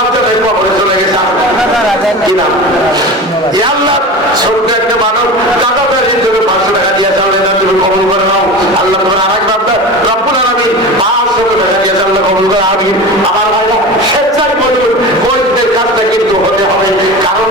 কবরে চলে গেছে কি নাম? আল্লাহ ছোট্ট একটা মানব দাদা তার জন্য 500 টাকা দিয়ে চাললে না, তুমি কবুল করে নাও আল্লাহ। তোমার আরেক বান্দা রব্বুল আলামিন 500 টাকা দিয়ে চাললে কবুল করে আমিন। আমার ভাইরা স্বেচ্ছায় বলুন, বৈধদের কাজটা কিন্তু হতে হবে, কারণ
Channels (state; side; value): normal; both; correlation 0.31